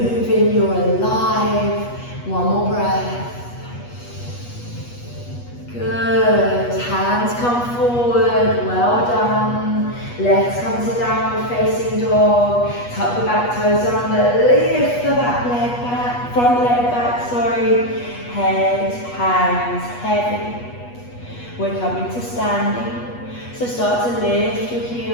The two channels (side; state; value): right; late; 8.3 ms